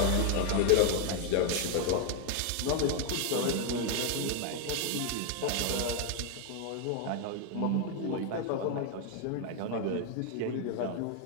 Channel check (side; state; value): both; different; correlation 0.01